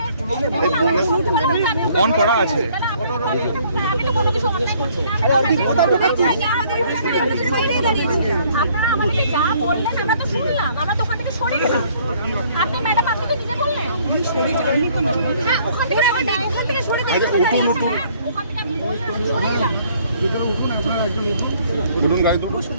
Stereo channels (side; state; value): both; inverted; correlation -0.61